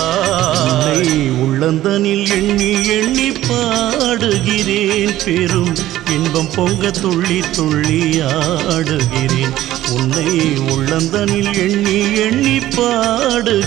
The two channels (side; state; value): left; quieter; 14.3 dB